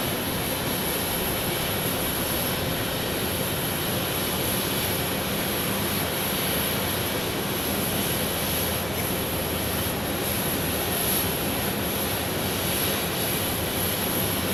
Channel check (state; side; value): normal; both; correlation 0.96